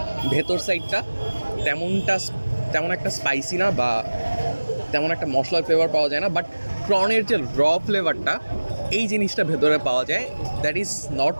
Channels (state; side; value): inverted; both; correlation -1.00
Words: ভেতর সাইডটা তেমন একটা স্পাইসি না, বা তেমন একটা মশলার ফ্লেভার পাওয়া যায় না, বাট প্রনের যে র ফ্লেভারটা এই জিনিসটা ভেতরে পাওয়া যায়, that is not